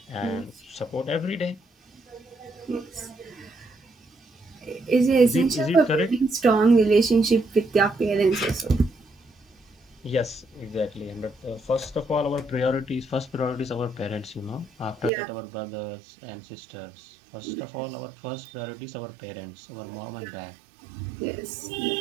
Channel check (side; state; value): left; drops out; at 15.1 s